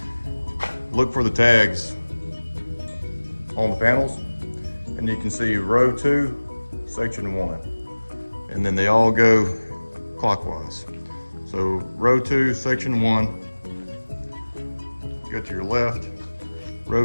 look for the tags on the panels, and you can see row 2, section 1, and then they all go clockwise. So row 2, section 1, go to your left,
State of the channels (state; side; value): inverted; both; correlation -1.00